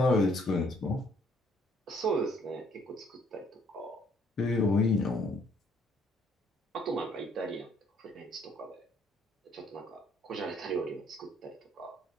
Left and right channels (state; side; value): normal; both; correlation 0.65